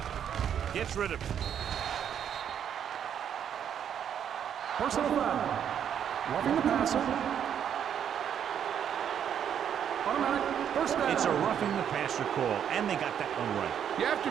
gets rid of it. Personal foul. Roughing the passer. Automatic first down. It's a roughing the passer call, and they got that one right. You have to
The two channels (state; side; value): quieter; left; 8.9 dB